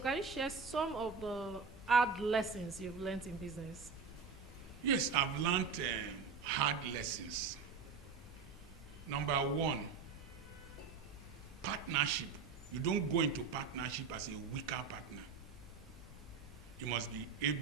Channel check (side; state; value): left; quieter; 5.3 dB